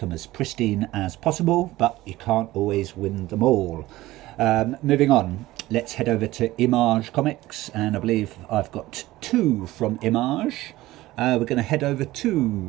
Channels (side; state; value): left; quieter; 17.3 dB